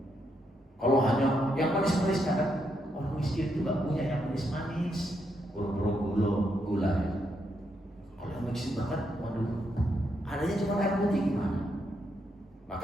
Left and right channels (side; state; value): both; normal; correlation 0.79